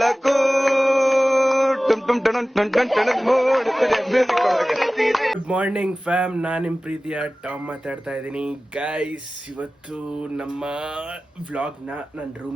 good morning fam, ನಾನು ನಿಮ್ಮ ಪ್ರೀತಿಯ ಟಾಮ್ ಮಾತಾಡ್ತಾ ಇದ್ದೀನಿ. ಗೈಸ್, ಇವತ್ತು ನಮ್ಮ ವ್ಲಾಗ್ನ ನನ್ನ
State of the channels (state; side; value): normal; both; correlation 0.97